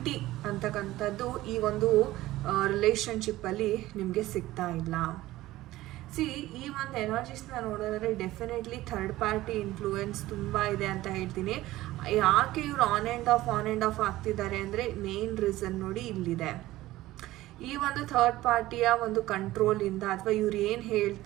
ಅಂತಕ್ಕಂಥದ್ದು ಈ ಒಂದು ರಿಲೇಷನ್ಶಿಪ್ಪಲ್ಲಿ ನಿಮಗೆ ಸಿಗ್ತಾ ಇಲ್ಲ. ಈ ಒಂದು ಎನರ್ಜೀಸ್ನ ನೋಡೋದಾದ್ರೆ ಡೆಫಿನೆಟ್ಲಿ ಥರ್ಡ್ ಪಾರ್ಟಿ ಇನ್ಫ್ಲೂಯೆನ್ಸ್ ತುಂಬ ಇದೆ ಅಂತ ಹೇಳ್ತೀನಿ. ಯಾಕೆ ಇವ್ರು ಆನ್ ಆ್ಯಂಡ್ ಆಫ್ ಆಗ್ತಿದ್ದಾರೆ ಅಂದರೆ ಮೇನ್ ರೀಸನ್ ನೋಡಿ ಇಲ್ಲಿದೆ. ಈ ಒಂದು ಥರ್ಡ್ ಪಾರ್ಟಿಯ ಒಂದು ಕಂಟ್ರೋಲಿಂದ ಅಥವಾ ಇವ್ರು ಏನು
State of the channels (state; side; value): quieter; left; 16.6 dB